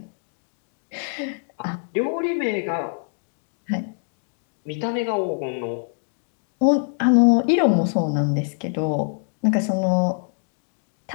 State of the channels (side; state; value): right; silent; digital silence